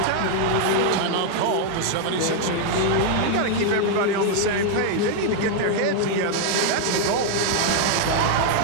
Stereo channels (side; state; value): both; different; correlation 0.00